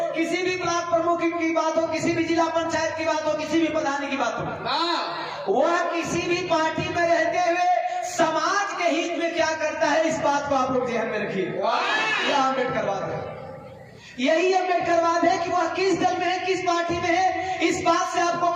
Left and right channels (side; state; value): both; identical; correlation 1.00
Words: किसी भी ब्लॉक प्रमुख की बात हो, किसी भी जिला पंचायत की बात हो, किसी भी प्रधान की बात हो, वह किसी भी पार्टी में रहते हुए समाज के हित में क्या करता है, इस बात को आप लोग ध्यान में रखिए। यह अम्बेडकरवाद है, यही अम्बेडकरवाद है कि वह किस दल में है, किस पार्टी में है, इस बात से आपको